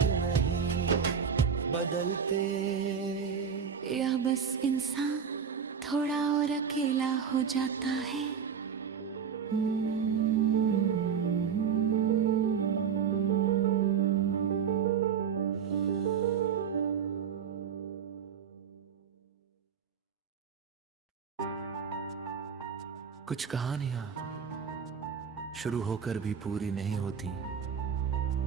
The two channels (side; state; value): left; quieter; 7.1 dB